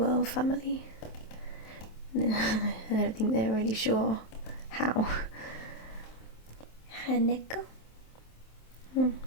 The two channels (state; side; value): late; right; 27 ms